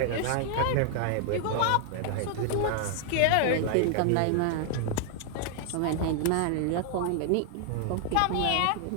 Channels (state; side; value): different; both; correlation 0.00